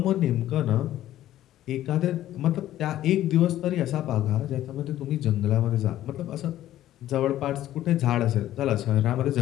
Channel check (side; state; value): right; quieter; 13.3 dB